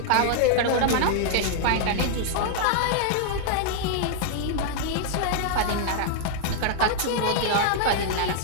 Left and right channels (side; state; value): both; different; correlation -0.01